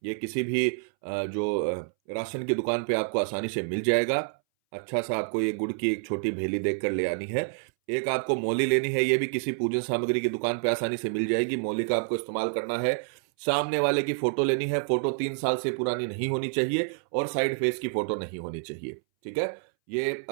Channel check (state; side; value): silent; left; 59 dB below the other